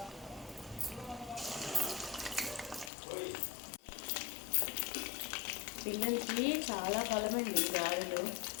పిల్లలకి చాలా బలమండి గారెలు.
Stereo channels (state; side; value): drops out; right; at 2.9 s